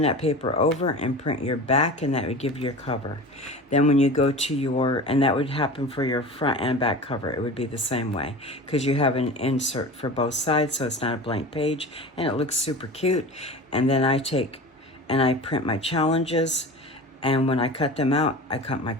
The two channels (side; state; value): both; normal; correlation 0.34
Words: that paper over and print your back, and that would give you your cover. Then when you go to and that would happen for your front and back cover, it would be the same way, because you have an insert for both sides, so it's not a blank page, and it looks super cute. And then I take and I print my challenges. And when I cut them out, I cut my